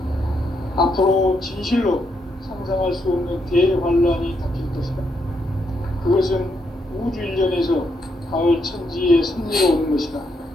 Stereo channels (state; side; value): normal; both; correlation 0.78